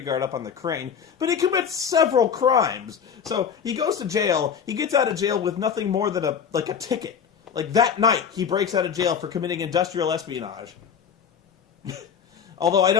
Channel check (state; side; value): quieter; right; 7.3 dB